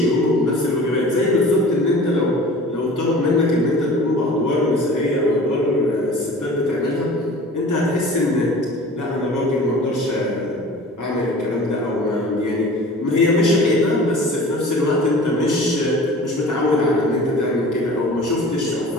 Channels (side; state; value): both; normal; correlation 0.42